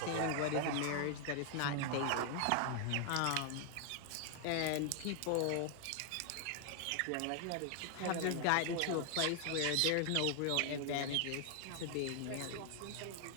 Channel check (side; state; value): both; different; correlation 0.00